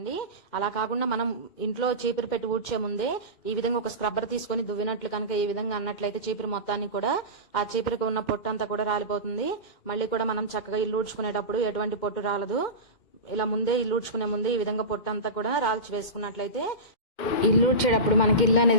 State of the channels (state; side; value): late; right; 2.1 ms